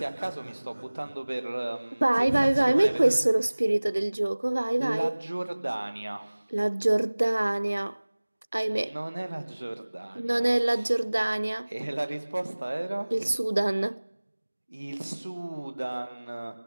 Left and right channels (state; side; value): inverted; both; correlation -1.00